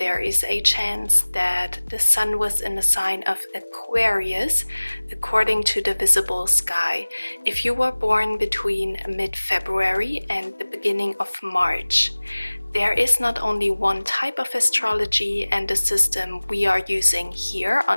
is a chance that the sun was in the sign of Aquarius according to the visible sky. If you were born between mid-February and the beginning of March, there is not only one type of astrology, and the system we are using here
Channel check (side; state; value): both; inverted; correlation -1.00